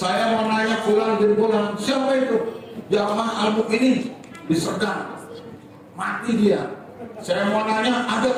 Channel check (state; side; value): identical; both; correlation 1.00